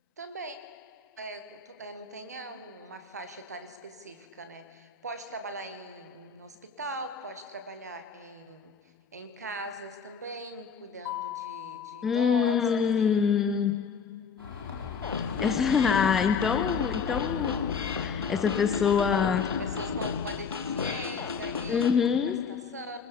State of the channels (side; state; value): right; quieter; 5.9 dB